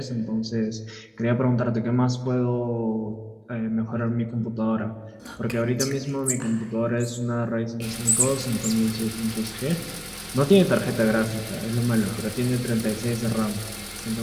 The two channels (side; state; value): both; identical; correlation 1.00